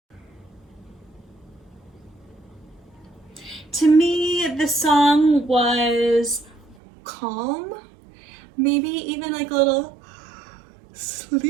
To me, the song was calm, maybe even like a little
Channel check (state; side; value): drops out; left; at 6.8 s